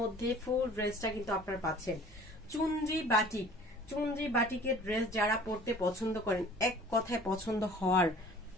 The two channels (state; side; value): normal; both; correlation 0.49